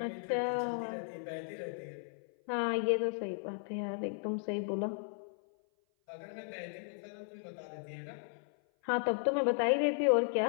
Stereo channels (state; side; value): silent; right; 54 dB below the other